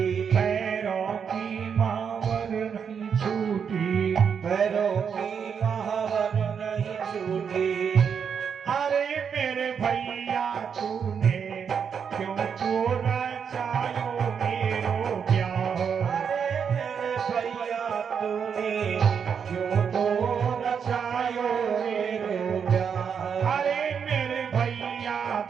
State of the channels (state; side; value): quieter; left; 7.0 dB